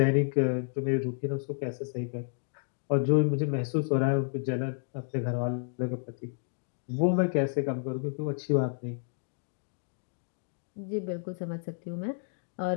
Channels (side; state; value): right; silent; digital silence